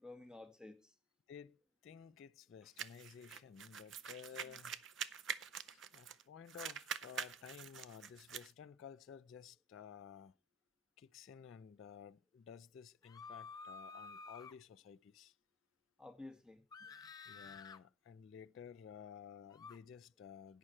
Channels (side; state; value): both; normal; correlation 0.34